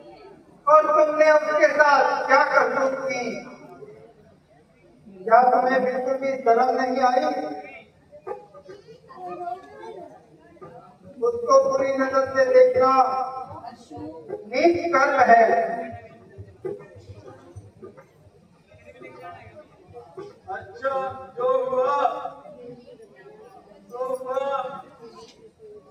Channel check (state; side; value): identical; both; correlation 1.00